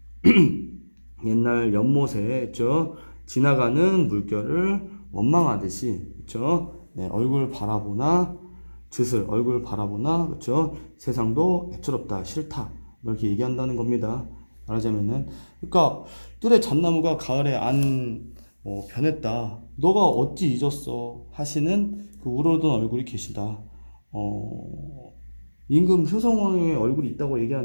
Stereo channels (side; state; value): both; inverted; correlation -1.00